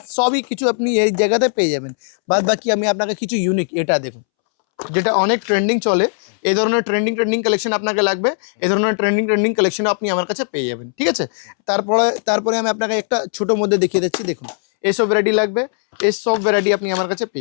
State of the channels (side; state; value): right; silent; 67 dB below the other